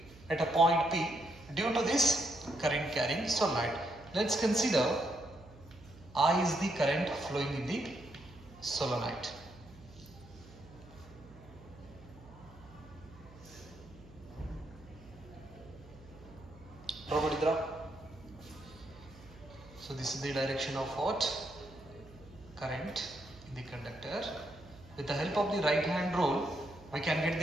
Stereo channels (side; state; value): right; noise; hum, 21 dB below the sound